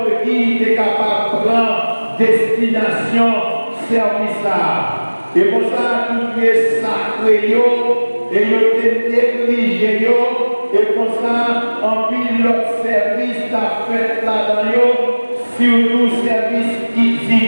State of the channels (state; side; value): inverted; both; correlation -1.00